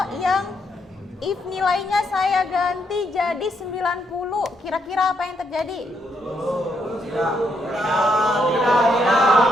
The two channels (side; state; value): both; normal; correlation 0.76